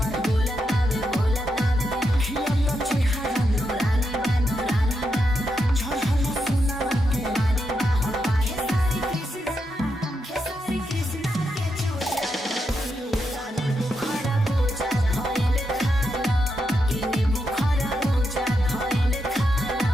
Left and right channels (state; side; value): normal; both; correlation 0.84